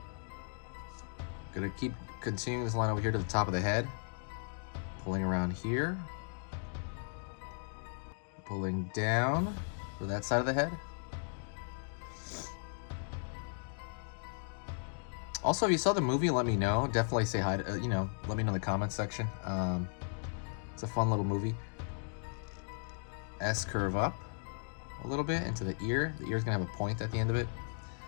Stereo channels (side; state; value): right; silent; digital silence